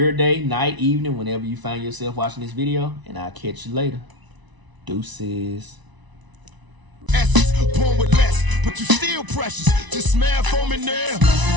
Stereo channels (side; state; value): left; late; 1.0 ms